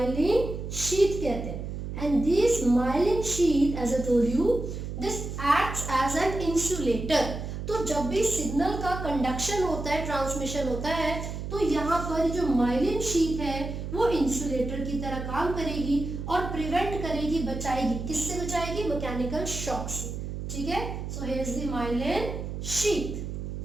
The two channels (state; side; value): noise; right; hum, 6 dB below the sound